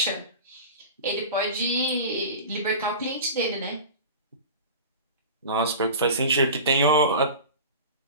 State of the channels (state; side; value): inverted; both; correlation -0.34